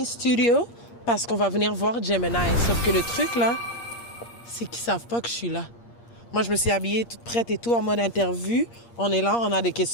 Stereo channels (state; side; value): late; right; 8.6 ms